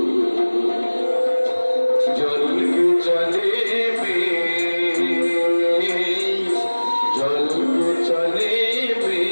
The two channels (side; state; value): both; inverted; correlation -1.00